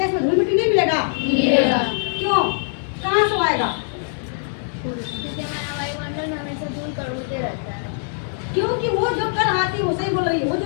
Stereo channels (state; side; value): silent; right; digital silence